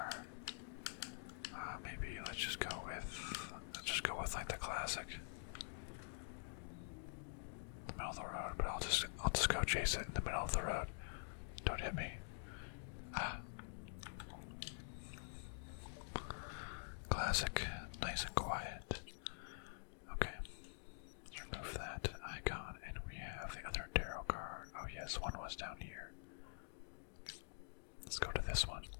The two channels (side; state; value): right; silent; digital silence